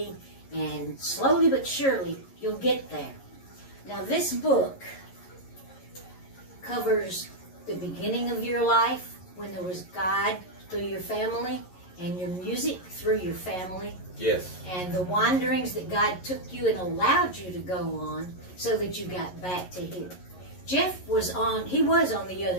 and slowly but surely, you'll get there. Now, this book covers the beginning of your life, when there was God through your family, and your music through your family. Yes. And the wanderings that God took you and allowed you to go on so that you got back to him. Jeff was on the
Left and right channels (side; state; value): right; late; 11 ms